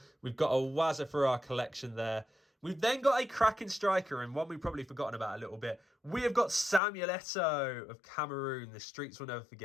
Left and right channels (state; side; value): drops out; right; at 6.8 s